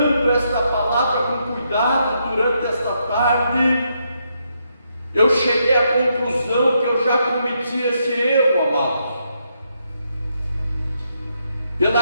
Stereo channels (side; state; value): both; inverted; correlation -0.78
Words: esta palavra com cuidado durante esta tarde, eu cheguei à conclusão que eu já cometi esse erro, amados.